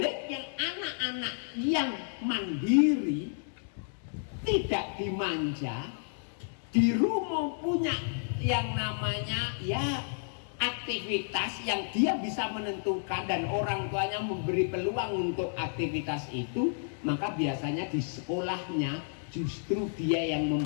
anak-anak yang mandiri, tidak dimanja, di rumah punya yang namanya ya aktivitas yang dia bisa menentukan dan orang tuanya memberi peluang untuk aktivitas itu, maka biasanya di sekolahnya justru dia yang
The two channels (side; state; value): right; silent; digital silence